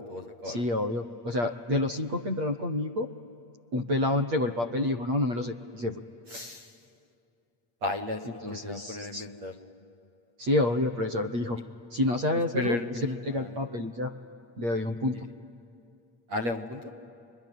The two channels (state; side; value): late; left; 8.5 ms